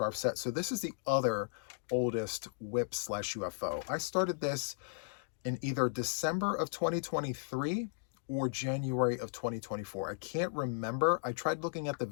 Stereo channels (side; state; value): right; silent; digital silence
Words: set. So this is the other oldest WIPS/UFO. I started this in either December of 2023 or January of 2024. I can't remember. I tried looking at the